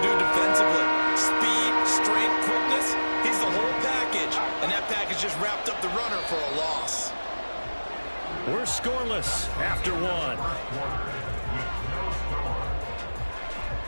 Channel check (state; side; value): inverted; both; correlation -1.00